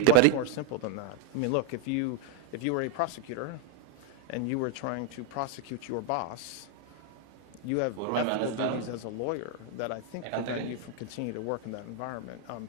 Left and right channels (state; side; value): different; both; correlation 0.01